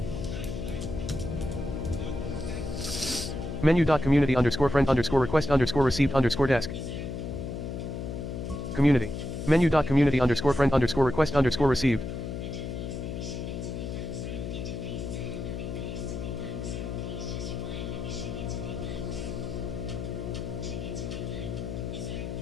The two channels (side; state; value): left; noise; hum, 5 dB below the sound